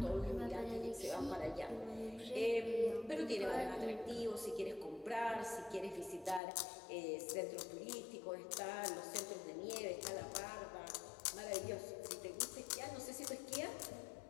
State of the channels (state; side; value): drops out; right; at 6.4 s